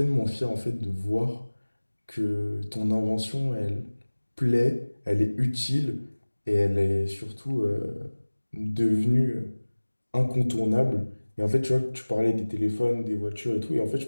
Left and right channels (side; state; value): both; inverted; correlation -1.00